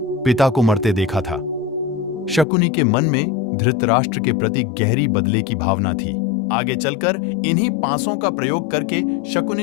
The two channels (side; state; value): right; drops out; at 2.5 s